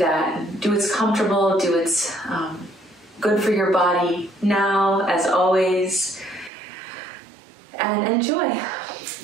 Do what's comfortable, do what's good for your body now, as always. And enjoy.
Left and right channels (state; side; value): drops out; left; at 6.5 s